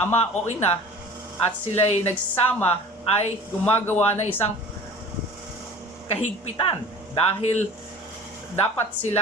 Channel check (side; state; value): both; normal; correlation 0.42